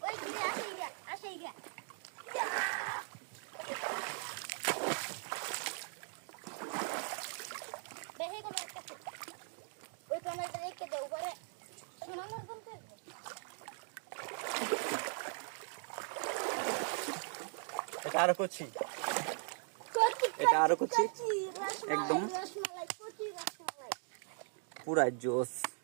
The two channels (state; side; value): silent; left; 51 dB below the other